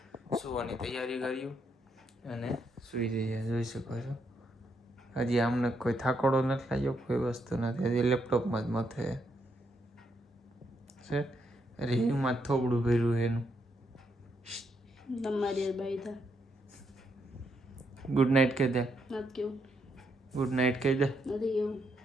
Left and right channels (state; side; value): normal; both; correlation 0.77